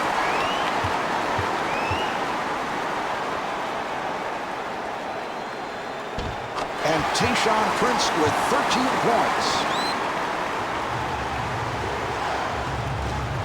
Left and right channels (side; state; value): both; identical; correlation 1.00